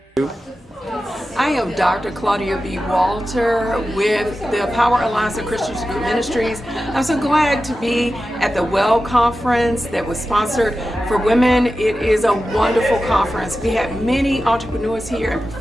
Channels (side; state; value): both; normal; correlation 0.93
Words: I am Dr. Claudia B. Walter with the Power Alliance of Christian Ministries. I'm so glad to be at the WEL conference that was sponsored for women. It is a wonderful conference. We had many entrepreneurs here and